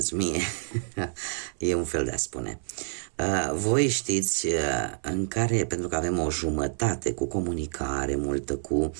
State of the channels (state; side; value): silent; left; 59 dB below the other